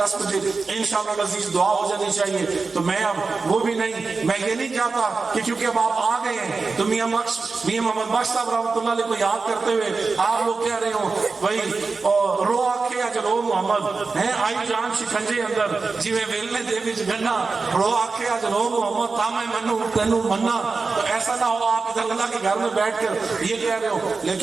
بجے انشاءاللہ العزیز دعا ہو جانی چاہیے، تو میں اب وہ بھی نہیں، میں یہ نہیں چاہتا کہ کیونکہ اب آپ آ گئے ہیں تو میاں محمد بخش صاحب رحمۃ اللہ علیہ کو یاد کرتے ہوئے آپ لوگ کہہ رہے ہو بھائی رو آکھے اج رو محمد ہے آئی جان شکنجے اندر جیویں ویلنے دے وچ گنا، رو آکھے اج رو محمد تا میں منو تینوں منا، تو ایسا نہ ہو آپ ادھر اللہ کے گھر میں بیٹھ کر یہ کہہ رہے ہو،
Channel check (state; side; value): quieter; left; 4.3 dB